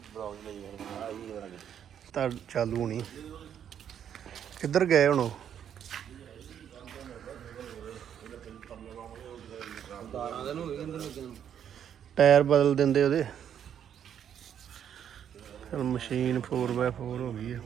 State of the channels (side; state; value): left; quieter; 9.1 dB